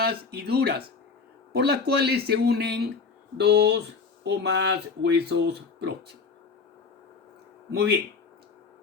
y duras por las cuales se unen dos o más huesos próximos. Muy bien,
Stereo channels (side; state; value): right; quieter; 5.0 dB